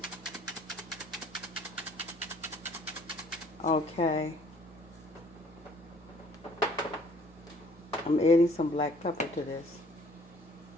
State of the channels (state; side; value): normal; both; correlation 0.58